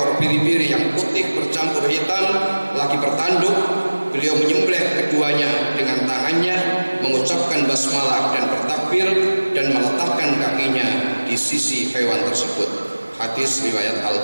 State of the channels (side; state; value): both; inverted; correlation -1.00